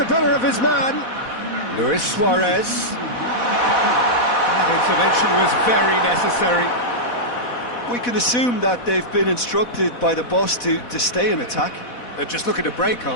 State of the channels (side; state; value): right; late; 4.1 ms